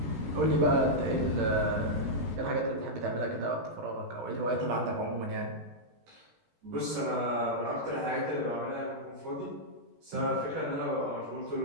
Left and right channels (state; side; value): late; left; 16 ms